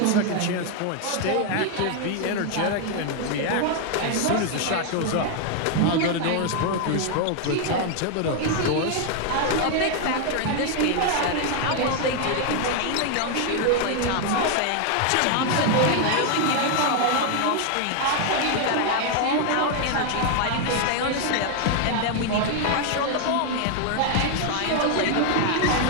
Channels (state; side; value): different; both; correlation 0.00